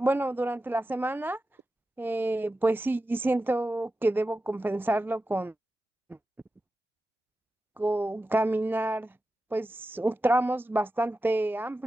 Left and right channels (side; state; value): both; normal; correlation 0.92